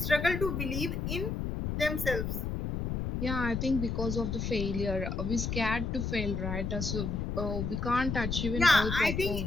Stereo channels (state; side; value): noise; left; rumble, 2 dB below the sound